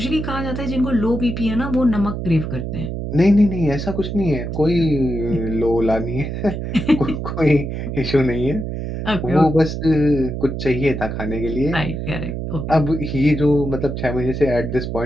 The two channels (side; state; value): right; noise; hum, 5 dB below the sound